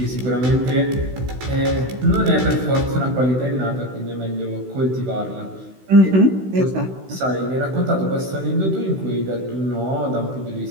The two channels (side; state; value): left; late; 16 ms